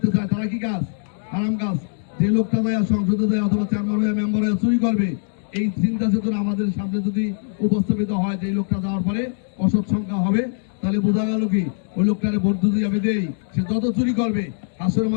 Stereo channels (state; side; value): silent; right; digital silence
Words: চায় তারা কি কাজ? হারাম কাজ। যে লোকটা যায় সংসদে যায় অথবা চেয়ারম্যান হয়ে মেম্বার হয়ে চুরি করবে, এই চিন্তা চেতনা আমাদের সামনে যদি উপস্থাপিত হয় যে এই লোকটা যাওয়ার পরে অসৎ সংখ্যা হবে, তাহলে বোঝা গেল কি ওই লোকটারে ভোট যদি আমি দেই, সে যত চুরি করবে হাসরের